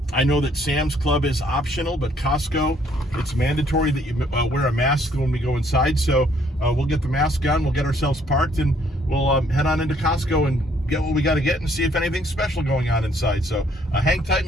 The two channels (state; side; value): normal; both; correlation 0.65